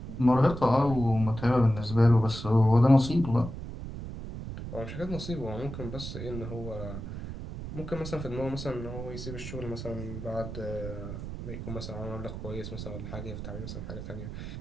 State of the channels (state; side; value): noise; right; rumble, 8 dB below the sound